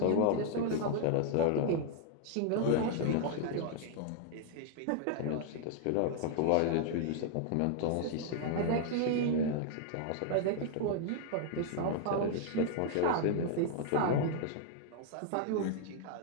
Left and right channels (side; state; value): both; different; correlation 0.00